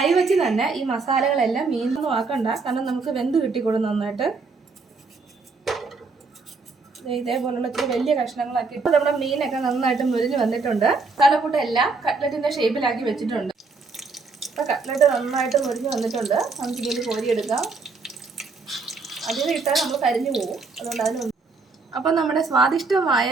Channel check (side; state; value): left; quieter; 4.2 dB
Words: വെച്ച് തന്നെ ഈ മസാലകളെല്ലാം മീനൊന്നും ആക്കണ്ട, കാരണം നമുക്ക് വെന്ത് കിട്ടിക്കൊള്ളും നന്നായിട്ട്. ഇതേപോലുള്ള ഇത്തിരി വലിയ കഷ്ണങ്ങളാക്കി ഇപ്പോൾ നമ്മുടെ മീനൊക്കെ നന്നായിട്ട് മുരിഞ്ഞ് വന്നിട്ടുണ്ട്. മസാലക്കൂട്ട് എല്ലാം കട്ട്ലറ്റിന്റെ ഷേപ്പിലാക്കി വെച്ചിട്ടുണ്ട്. അപ്പോൾ കട്ട്ലറ്റ് നന്നായിട്ട് മുരിഞ്ഞ് വന്നിട്ടുണ്ട്. നമുക്ക് ഇതിൽ കോരിയെടുക്കാം. അതിൽ ഇട്ടാൽ നമ്മൾ കരിഞ്ഞു പോകും, അതുകൊണ്ട് അതിന്. അപ്പോൾ നമ്മുടെ